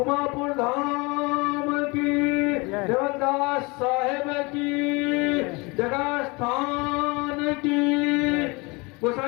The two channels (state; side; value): quieter; right; 26.8 dB